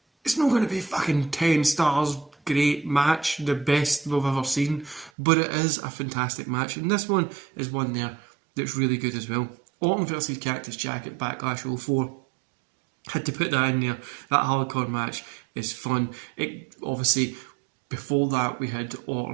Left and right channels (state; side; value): drops out; left; at 5.1 s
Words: It's not going to be fucking 10 stars, great match, the best we've ever seen, but it is a fantastic match, and this one is one there that's really good as well. Orton versus Cactus Jack at Backlash 04. Had to put that in there. That hardcore match is fun. It obviously, before that we had